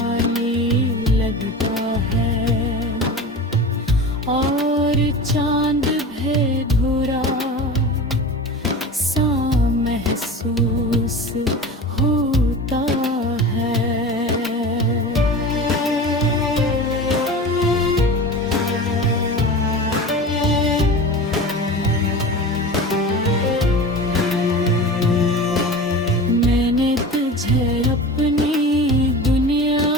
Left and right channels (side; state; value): both; normal; correlation 0.32